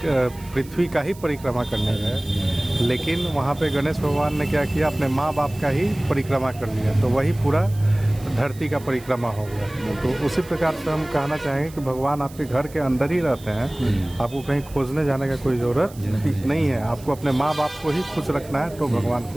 पृथ्वी का ही परिक्रमा करने गए, लेकिन वहाँ पे गणेश भगवान ने क्या किया, अपने माँ बाप का ही परिक्रमा कर लिया, तो वही पूरा धरती का परिक्रमा हो गया। तो उसी प्रकार से हम कहना चाहेंगे कि भगवान आपके घर के अंदर ही रहते हैं, आपको कहीं खोजने जाने का कोई ज़रूरत नहीं है। आपको अपने माँ बाप को ही खुश रखना है, तो भगवान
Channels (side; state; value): right; noise; hiss, 21 dB below the sound